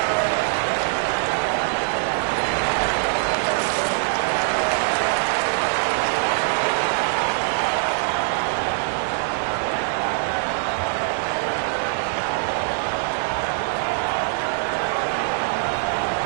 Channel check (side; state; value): left; silent; digital silence